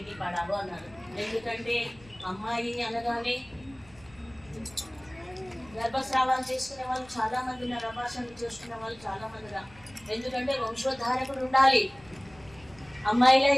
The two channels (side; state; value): left; noise; rumble, 25 dB below the sound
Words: పడావో అన్నారు. ఎందుకంటే అమ్మాయి అనగానే గర్భస్రావాలు చేసుకునే వాళ్ళు చాలా మంది ఉన్నారు, అభాషణలు చేసుకునే వాళ్ళు చాలా మంది ఉన్నారు. ఎందుకంటే వంశోద్ధారకుడు ఉండాలి, అమ్మాయిలు